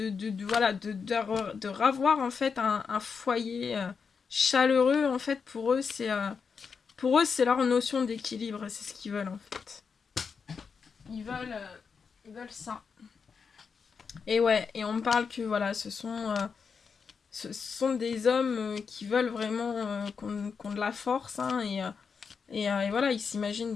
voilà, de ravoir, en fait, un foyer chaleureux, en fait, pour eux, c'est leur notion d'équilibre, c'est ce qu'ils veulent, en fait. Ils veulent ça. Et ouais, et on me parle que, voilà, ce sont des hommes qui veulent vraiment qu'on de la force, hein, et voilà, ils s'imaginent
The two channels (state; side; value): quieter; right; 5.8 dB